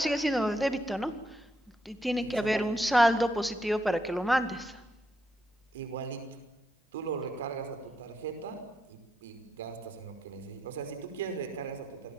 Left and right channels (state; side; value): normal; both; correlation 0.80